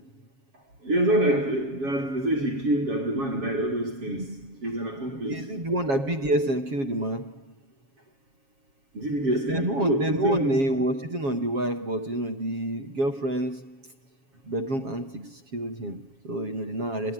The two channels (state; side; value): late; left; 7.3 ms